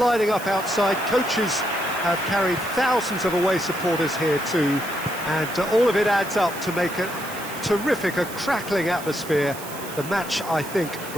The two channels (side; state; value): right; noise; hiss, 13 dB below the sound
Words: up outside. Coaches have carried thousands of away supporters here too, and all of it adds up to make a terrific, a crackling atmosphere. The match, I think,